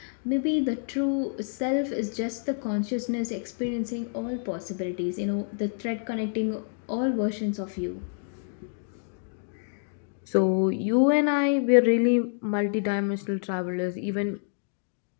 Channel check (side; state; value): right; silent; digital silence